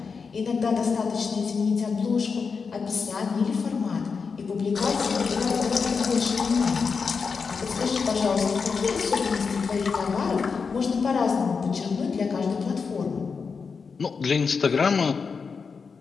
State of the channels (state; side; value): quieter; right; 5.3 dB